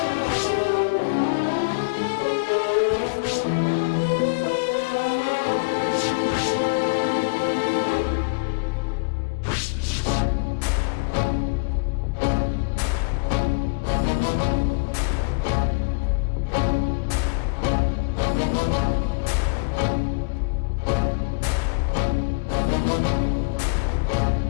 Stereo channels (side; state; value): right; quieter; 34.1 dB